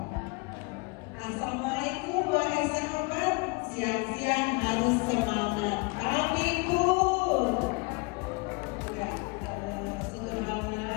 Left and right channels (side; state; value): right; quieter; 29.1 dB